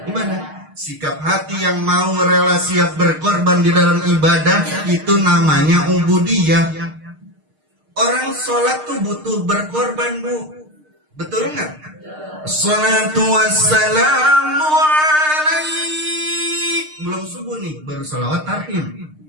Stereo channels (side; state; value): left; late; 6.5 ms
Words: Sikap hati yang mau rela siap berkorban di dalam ibadah itu namanya ubudiyah. Orang sholat tuh butuh berkorban, Bu. Betul nggak? Salatu wassalamu alaik. Belum subuh nih, baru salawat tarhim.